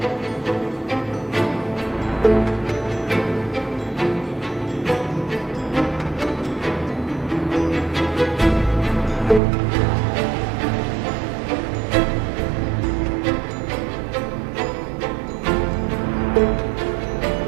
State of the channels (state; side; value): drops out; left; at 9.4 s